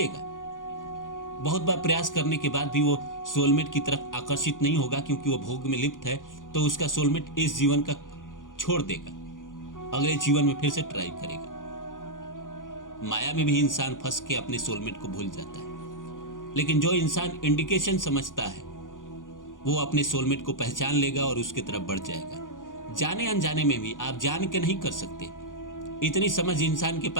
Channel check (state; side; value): late; right; 0.88 ms